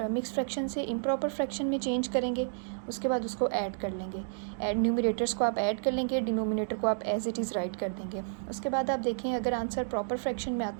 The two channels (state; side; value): silent; left; digital silence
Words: मिक्स फ्रैक्शन से इम्प्रॉपर फ्रैक्शन में चेंज करेंगे. उसके बाद उसको ऐड कर लेंगे. न्यूमिनेटर्स को आप ऐड कर लेंगे, डिनोमिनेटर को आप एज इट इज़ राइट कर देंगे. उसके बाद आप देखें अगर आंसर प्रॉपर फ्रैक्शन में